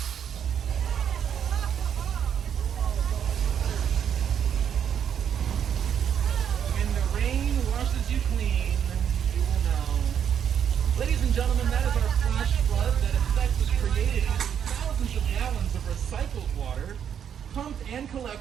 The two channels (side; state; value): left; quieter; 8.5 dB